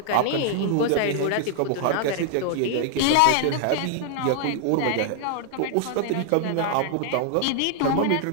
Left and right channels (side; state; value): both; different; correlation 0.00